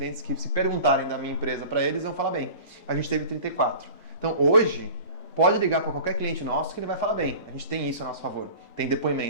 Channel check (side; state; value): both; inverted; correlation -0.40